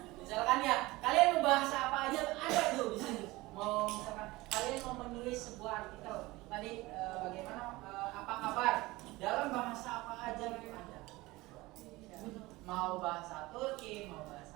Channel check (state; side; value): quieter; left; 20.5 dB